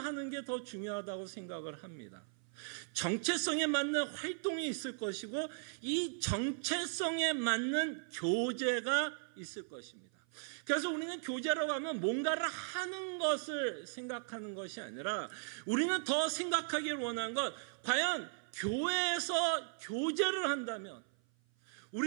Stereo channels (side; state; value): left; silent; 53 dB below the other